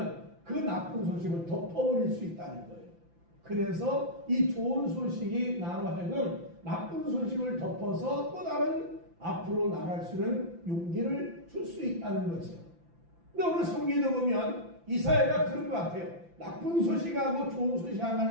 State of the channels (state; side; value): late; left; 5.9 ms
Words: 그 나쁜 소식을 덮어버릴 수 있다는 거예요. 그래서 이 좋은 소식이 나와 하여금 나쁜 소식을 덮어서 또 다른 앞으로 나갈 수 있는 용기를 줄 수 있다는 거죠. 근데 오늘 성경에 보면 이사야가 그런 것 같아요. 나쁜 소식하고 좋은 소식